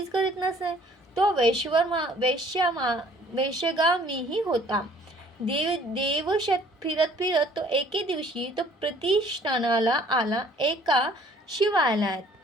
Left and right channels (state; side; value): normal; both; correlation 0.56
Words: करीत नसे. तो वेश्यागामीही होता. देवशत फिरत तो एके दिवशी तो प्रतिष्ठानाला आला. एका शिवालयात